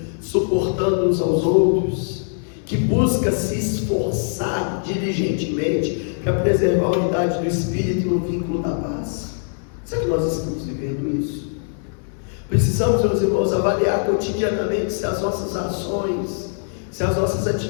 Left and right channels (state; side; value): silent; right; digital silence